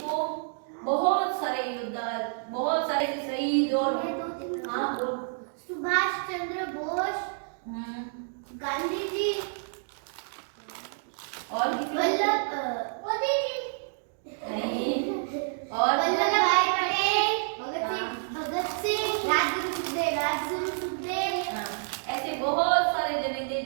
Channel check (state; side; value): silent; left; digital silence